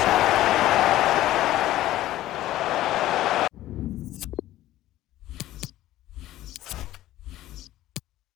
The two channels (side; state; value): right; quieter; 14.7 dB